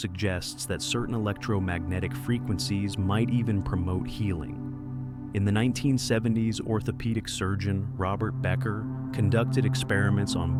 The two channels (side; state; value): both; identical; correlation 1.00